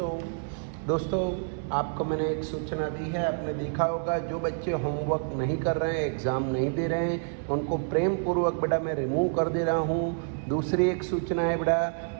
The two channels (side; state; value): left; silent; digital silence